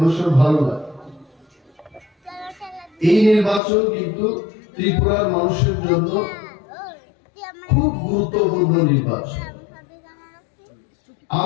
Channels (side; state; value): right; drops out; at 3.6 s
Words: সময় ভালো লাগে। এই নির্বাচন কিন্তু ত্রিপুরার মানুষের জন্য খুব গুরুত্বপূর্ণ নির্বাচন।